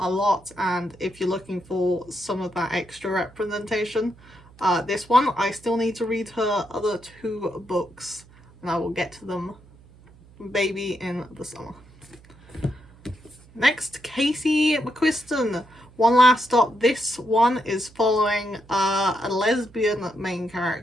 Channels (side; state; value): right; noise; hum, 25 dB below the sound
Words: a lot, and if you're looking for some of that extra representation, this one, I still need to read her other two books and I will get to them maybe in the summer. Next, Casey McQuiston, One Last Stop. This one is following a lesbian main